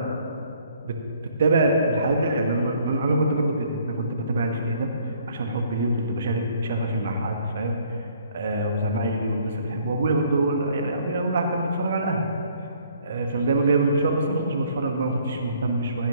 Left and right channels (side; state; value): both; inverted; correlation -0.62